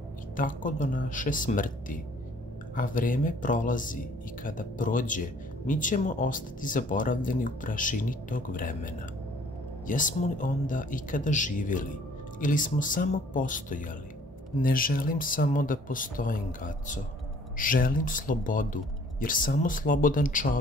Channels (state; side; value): normal; both; correlation 0.57